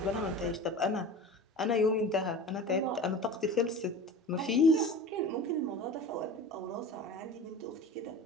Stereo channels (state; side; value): normal; both; correlation 0.36